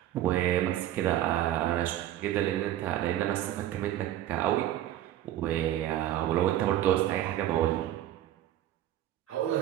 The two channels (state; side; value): quieter; left; 13.0 dB